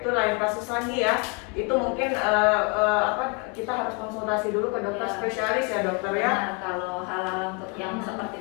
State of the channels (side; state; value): right; quieter; 33.6 dB